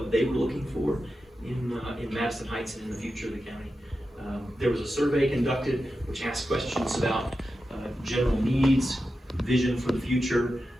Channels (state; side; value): normal; both; correlation 0.91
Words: they were looking for in Madison Heights and in the future of the county. There was a survey conducted which asked questions about general needs, vision for the future,